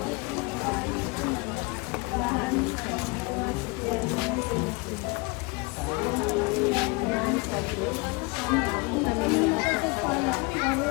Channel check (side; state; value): right; quieter; 28.0 dB